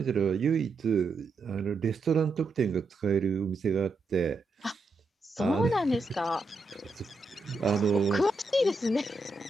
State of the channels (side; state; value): left; quieter; 3.4 dB